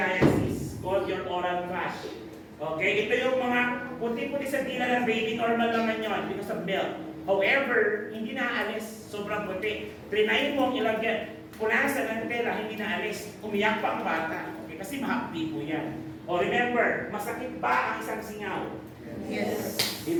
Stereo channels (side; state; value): both; identical; correlation 1.00